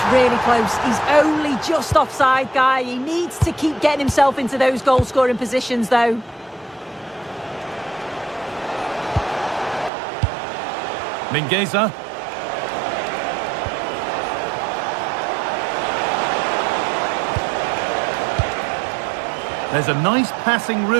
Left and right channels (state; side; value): drops out; left; at 9.9 s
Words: really close. He's only just offside, guy. He needs to keep getting himself into those goal-scoring positions, though. Mingueza. There's a nice passing